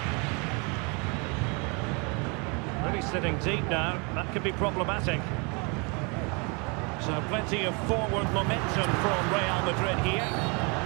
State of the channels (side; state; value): left; quieter; 31.6 dB